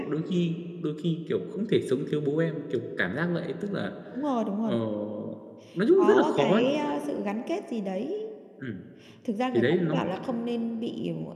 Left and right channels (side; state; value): both; identical; correlation 1.00